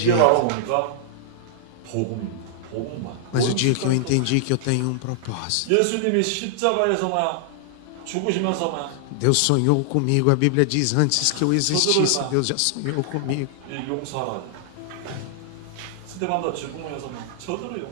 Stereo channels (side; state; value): both; different; correlation -0.01